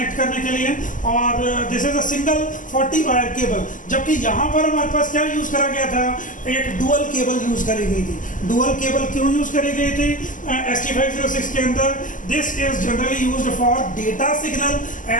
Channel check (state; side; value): late; right; 0.38 ms